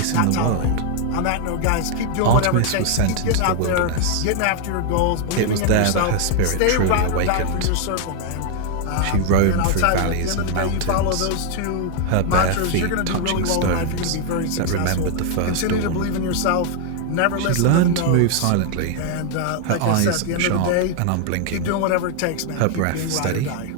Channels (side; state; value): both; different; correlation 0.00